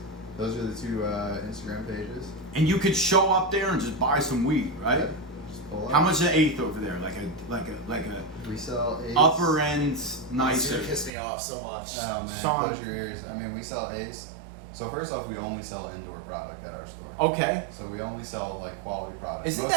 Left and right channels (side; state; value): left; drops out; at 11.1 s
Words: Those are the two Instagram pages. And you could show up there and just buy some weed, right? Yeah, just pull up. How much an eighth over there? Like a We sell eighths. upper end It's nicer. gonna piss me off so much. Oh man, Sean. close your ears. I mean, we sell eighths. So first off, we only sell indoor product at our store. Okay. So we only sell like quality products. Isn't Most